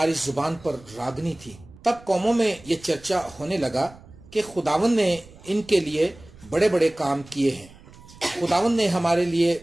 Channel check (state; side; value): noise; right; rumble, 22 dB below the sound